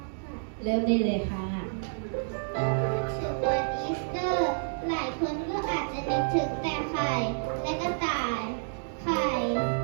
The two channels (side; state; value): left; silent; 58 dB below the other